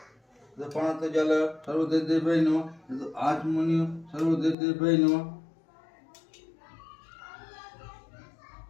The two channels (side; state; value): right; drops out; at 4.5 s